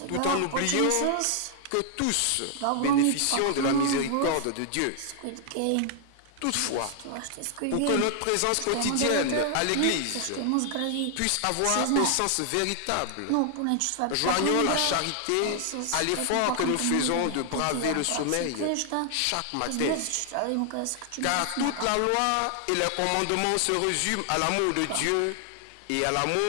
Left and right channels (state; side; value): different; both; correlation 0.00